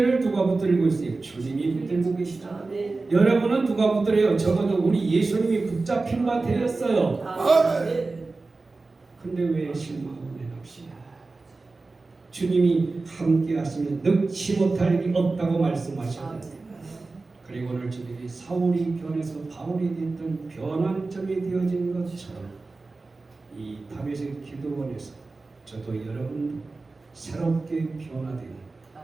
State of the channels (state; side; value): quieter; left; 3.6 dB